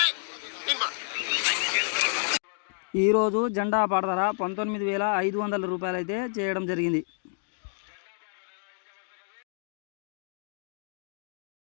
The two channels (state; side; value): silent; right; digital silence